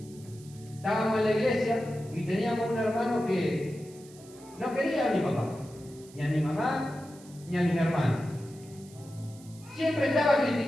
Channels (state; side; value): noise; right; hiss, 23 dB below the sound